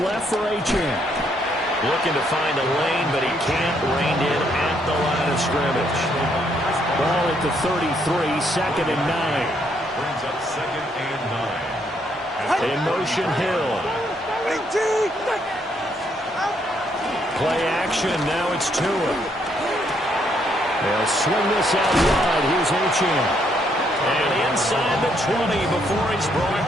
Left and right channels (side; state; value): both; normal; correlation 0.72